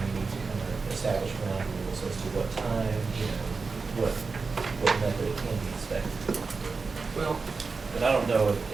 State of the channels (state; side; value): quieter; left; 4.5 dB